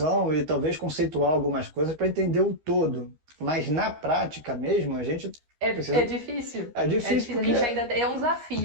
e talvez conceituar algumas coisas para entender o todo. Mas na prática mesmo, a gente é precisa. difícil. É É difícil difícil. A porque. gente ainda é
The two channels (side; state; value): left; late; 13 ms